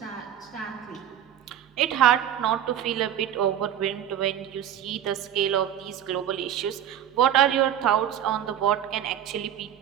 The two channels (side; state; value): left; quieter; 10.3 dB